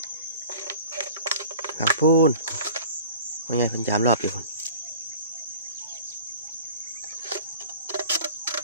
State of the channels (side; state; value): both; inverted; correlation -0.42